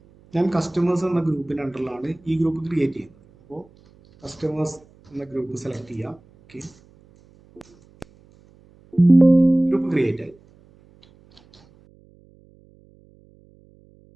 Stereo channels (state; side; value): noise; right; hum, 29 dB below the sound